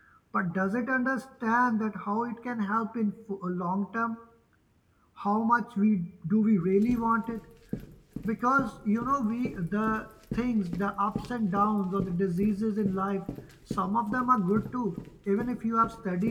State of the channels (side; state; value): both; identical; correlation 1.00